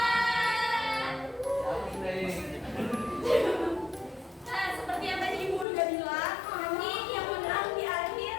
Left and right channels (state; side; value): drops out; right; at 5.7 s